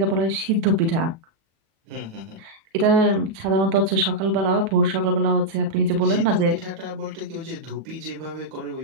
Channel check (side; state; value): left; late; 36 ms